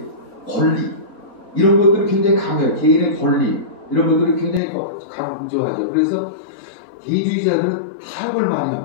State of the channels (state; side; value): drops out; right; at 4.6 s